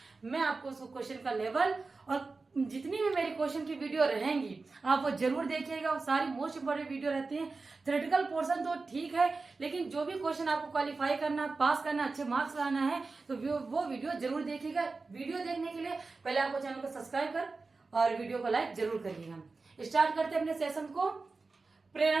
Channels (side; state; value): left; quieter; 3.9 dB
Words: मैं आपको उस क्वेश्चन का लेवल और जितनी भी मेरी क्वेश्चन की वीडियो रहेंगी आप वो जरूर देखिएगा। वो सारी मोस्ट इंपॉर्टेंट वीडियो रहती है। थ्योरेटिकल पोर्शन तो ठीक है, लेकिन जो भी क्वेश्चन आपको क्वालिफाई करना, पास करना, अच्छे मार्क्स लाना है, तो वो वीडियो जरूर देखिएगा। वीडियो देखने के लिए पहले आपको चैनल को सब्सक्राइब कर और वीडियो को लाइक जरूर करिएगा। स्टार्ट करते हैं अपने सेशन को।